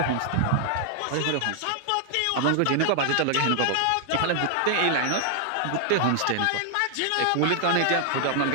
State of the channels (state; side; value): different; both; correlation 0.00